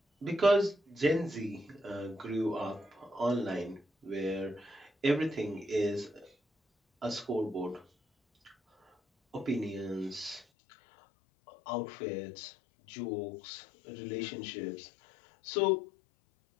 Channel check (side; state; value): right; drops out; at 10.5 s